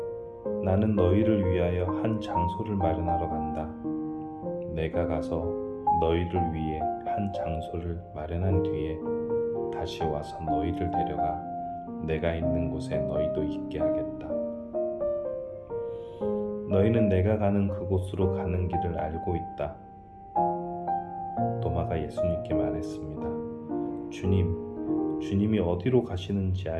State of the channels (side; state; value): both; identical; correlation 1.00